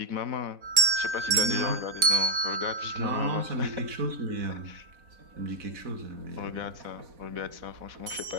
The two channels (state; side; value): late; left; 4.1 ms